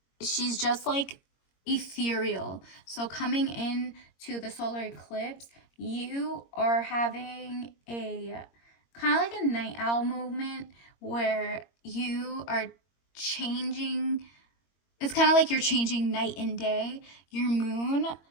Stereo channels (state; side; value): late; right; 21 ms